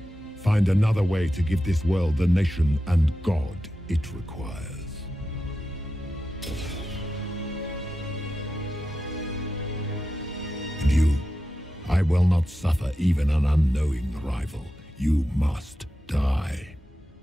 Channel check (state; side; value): normal; both; correlation 0.91